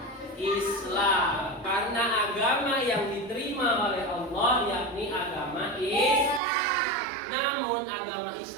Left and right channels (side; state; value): left; drops out; at 6.4 s